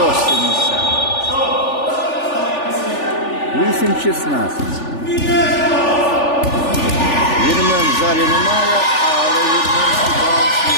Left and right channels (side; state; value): right; late; 3.4 ms